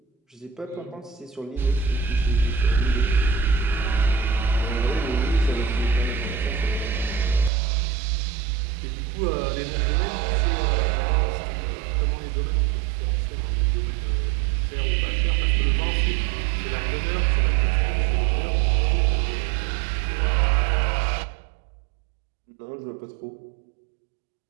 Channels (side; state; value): left; drops out; at 7.5 s